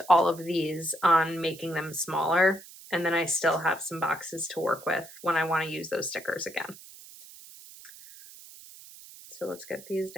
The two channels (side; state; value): right; noise; hiss, 18 dB below the sound